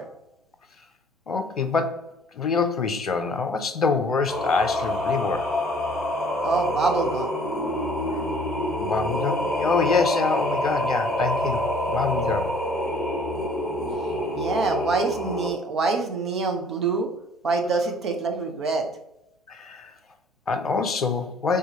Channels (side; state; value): both; normal; correlation 0.55